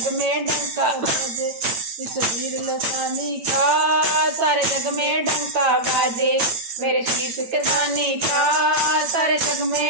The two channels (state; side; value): late; left; 8.9 ms